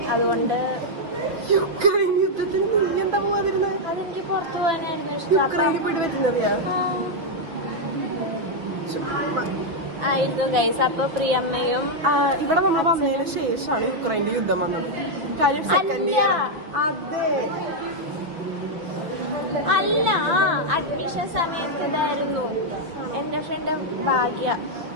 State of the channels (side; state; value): left; late; 5.9 ms